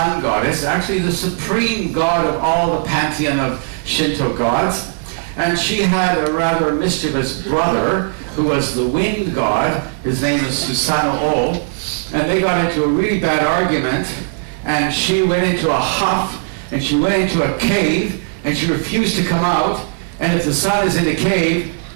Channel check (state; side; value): silent; left; digital silence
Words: goddess, actually the supreme god of all the pantheon of Shinto gods. And she had a rather mischievous brother who was the wind god. His name is Susanoo, and they got into a really bad argument, and she went into a huff, and she went into a cave, and she refused to come out. And if the sun is in a cave,